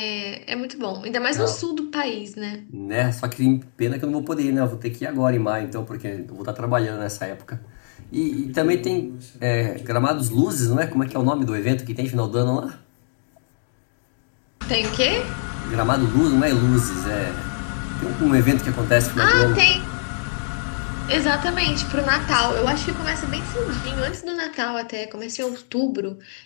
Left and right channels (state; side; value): silent; right; 63 dB below the other